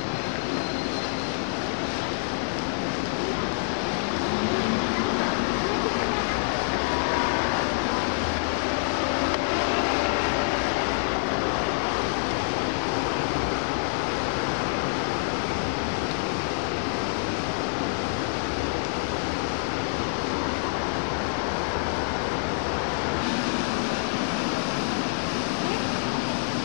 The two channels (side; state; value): right; silent; 60 dB below the other